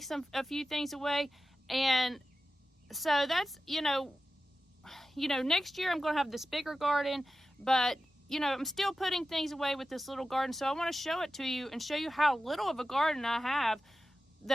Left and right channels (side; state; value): both; normal; correlation 0.93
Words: a few things away, and so that's, next year I'm going to have this bigger garden, but I'm still putting things away with this little garden. So I want to show it to you and show you how little of a garden I have,